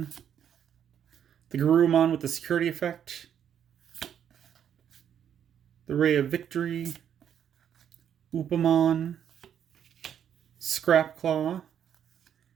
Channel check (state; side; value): quieter; left; 9.0 dB